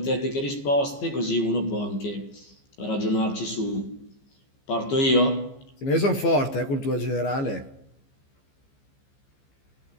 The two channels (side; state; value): right; late; 15 ms